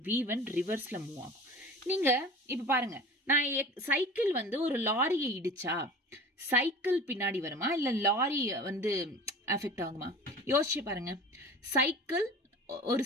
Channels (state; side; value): normal; both; correlation 0.39